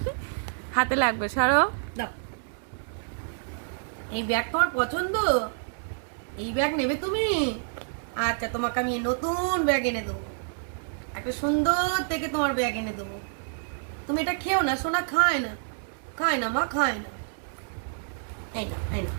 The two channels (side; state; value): left; silent; digital silence